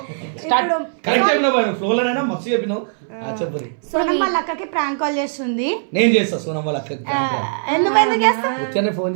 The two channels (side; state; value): left; silent; 63 dB below the other